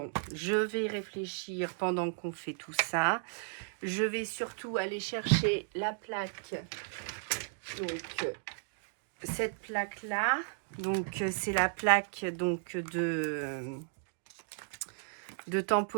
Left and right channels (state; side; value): silent; left; digital silence